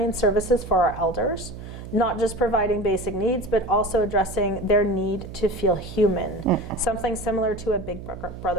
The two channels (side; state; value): right; noise; hum, 12 dB below the sound